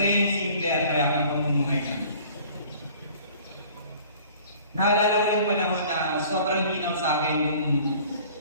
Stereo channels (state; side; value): inverted; both; correlation -0.50